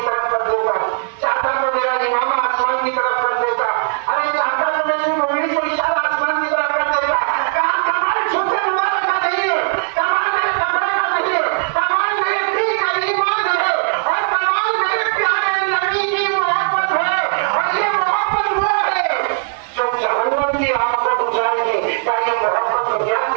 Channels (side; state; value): left; silent; digital silence